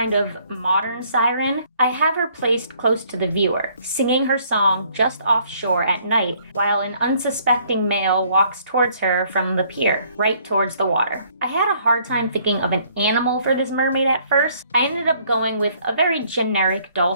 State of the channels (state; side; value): inverted; both; correlation -0.63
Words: of modern siren. I have her placed close to the viewer, singing her song just offshore at night, while an unsuspecting male walks towards her from the pier, right towards the water. I had a hard time thinking of an animal for this mermaid at first. I ended up going with a very generic